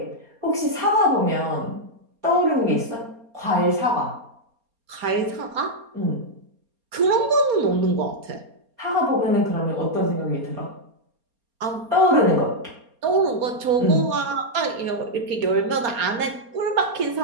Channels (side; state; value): left; late; 4.3 ms